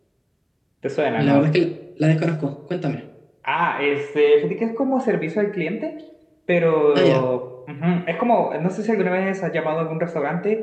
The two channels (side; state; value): both; identical; correlation 1.00